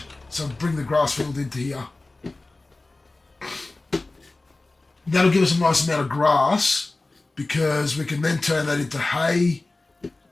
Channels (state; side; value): quieter; right; 3.1 dB